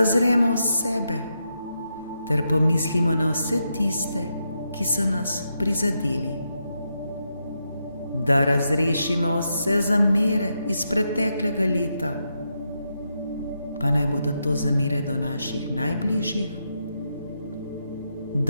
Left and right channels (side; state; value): both; inverted; correlation -0.83